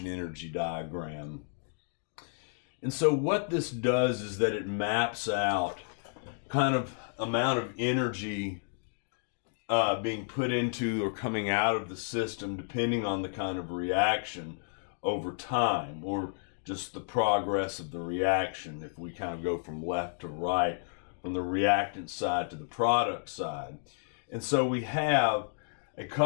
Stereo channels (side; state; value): right; silent; digital silence